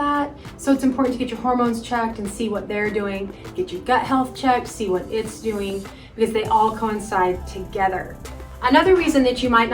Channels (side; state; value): both; identical; correlation 1.00